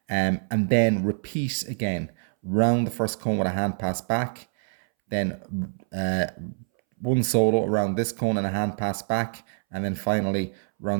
And then repeat again. Round the first cone with a hand pass back. Then one solo around this cone and a hand pass back. And then finally,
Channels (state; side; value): silent; left; 61 dB below the other